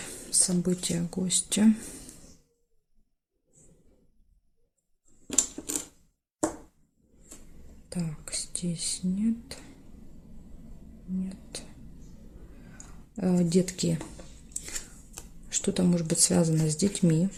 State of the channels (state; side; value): identical; both; correlation 1.00